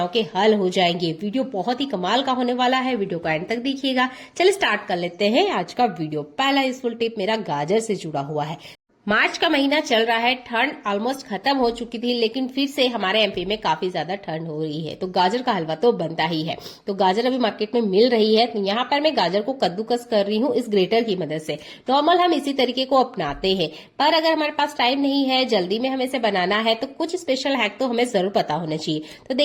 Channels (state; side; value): identical; both; correlation 1.00